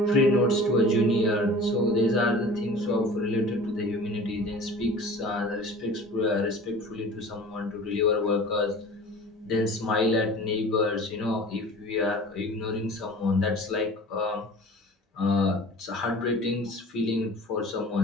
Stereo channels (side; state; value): both; normal; correlation 0.41